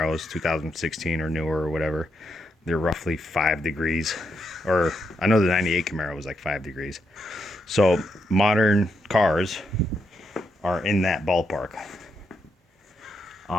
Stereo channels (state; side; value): normal; both; correlation 0.80